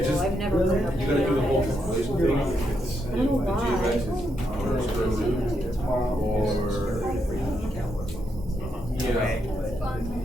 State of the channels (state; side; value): normal; both; correlation 0.80